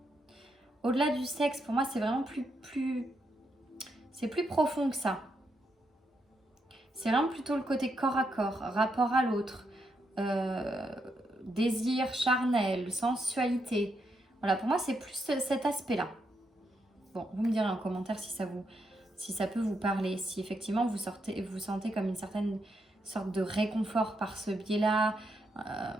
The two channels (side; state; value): both; normal; correlation 0.81